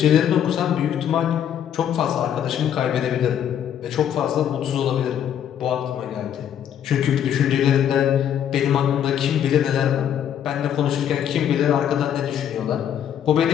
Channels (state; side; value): quieter; right; 9.6 dB